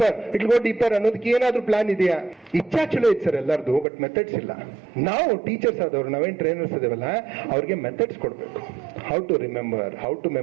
deeper ಅನ್ನೋದಕ್ಕೆ ಏನಾದ್ರೂ ಪ್ಲಾನ್ ಇದೆಯಾ? ಇಚ್ಛಾ ಚಲೋ ಐತಿ ಸರ್ ಎಲ್ಲರದು, ಬಟ್ ಮೆಥಡ್ಸ್ ಇಲ್ಲ. ನಾವು ಟೀಚರ್ಸ್ ಆದವ್ರು, ನಾವೇನ್ ಟ್ರೈನರ್ಸ್ ಇದೇವಲ್ಲ, ಅವ್ರಿಗೆ ಮೆಥಡ್ಸ್ ಕೊಡ್ಬೇಕು. How to remember, how to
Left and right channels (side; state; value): left; drops out; at 3.9 s